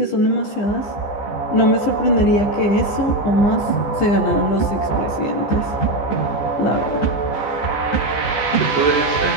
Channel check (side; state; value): right; late; 15 ms